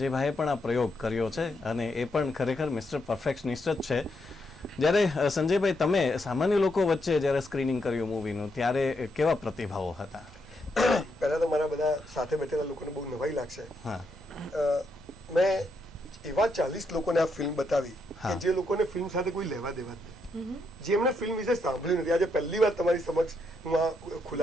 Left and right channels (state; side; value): normal; both; correlation 0.79